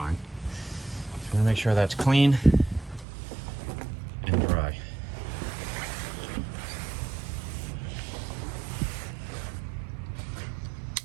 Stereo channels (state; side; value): drops out; left; at 3.1 s